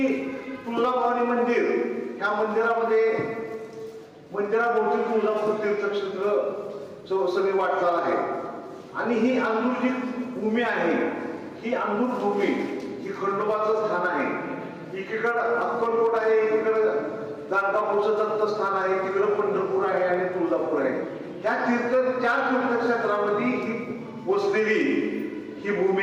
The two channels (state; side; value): identical; both; correlation 1.00